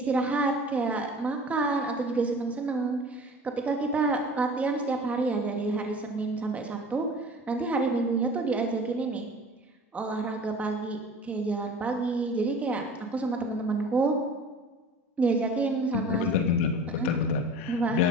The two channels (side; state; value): both; normal; correlation 0.42